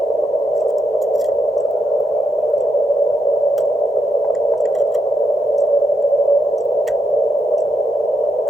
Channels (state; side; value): normal; both; correlation 0.82